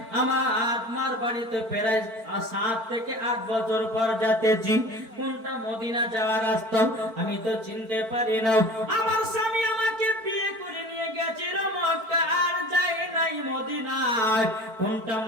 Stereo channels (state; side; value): late; left; 4.4 ms